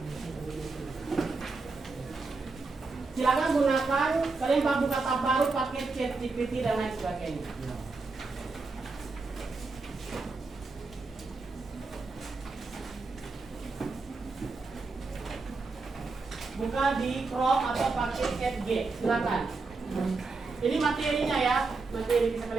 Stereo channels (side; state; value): left; quieter; 3.9 dB